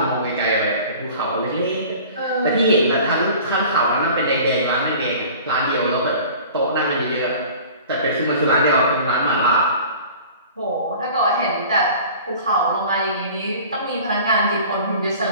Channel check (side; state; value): both; inverted; correlation -0.43